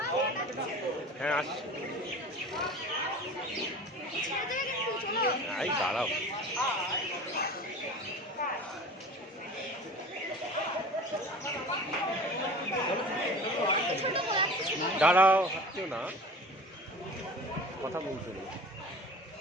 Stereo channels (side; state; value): both; normal; correlation 0.38